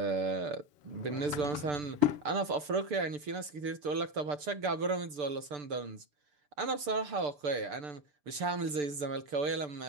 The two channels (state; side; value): late; left; 6.8 ms